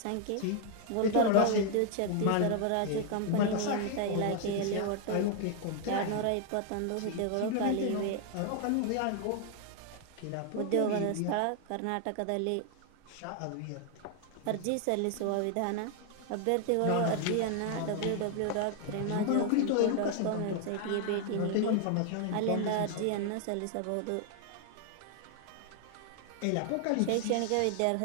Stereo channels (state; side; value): different; both; correlation 0.00